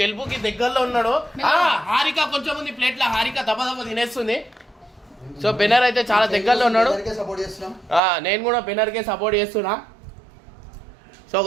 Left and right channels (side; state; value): left; drops out; at 8.0 s